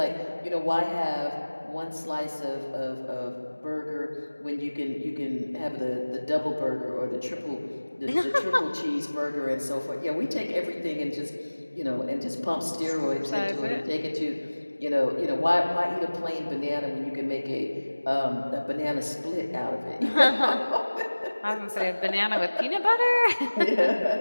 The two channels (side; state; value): both; inverted; correlation -1.00